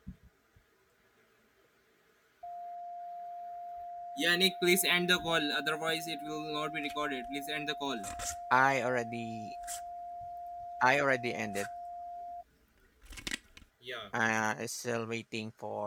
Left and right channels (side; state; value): both; identical; correlation 1.00